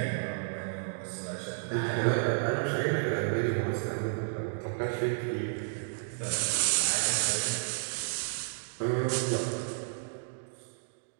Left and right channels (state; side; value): silent; left; digital silence